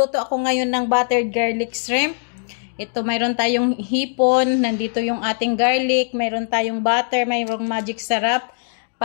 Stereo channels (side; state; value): right; silent; 65 dB below the other